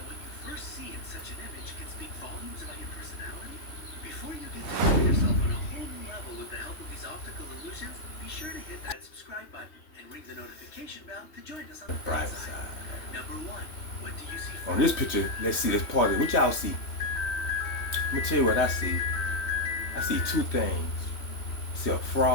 what you first see in such an image can speak volumes about your personality? Before you get to know yourself on a whole new level with the help of these optical illusions, be sure to hit that subscribe button and ring the notification bell to join us on the bright side. Number 1. What do you see first? On this picture, let's see, let's pause it. What y'all see? Let me tell you what I see. I see two things. I see a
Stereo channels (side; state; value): right; late; 3.2 ms